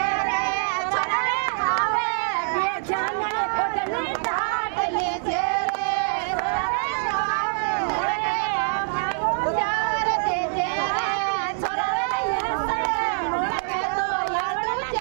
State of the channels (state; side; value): silent; left; digital silence